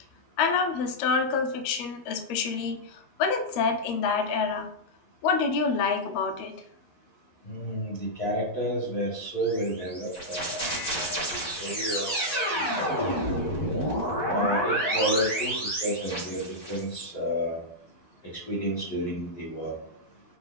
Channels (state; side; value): late; right; 13 ms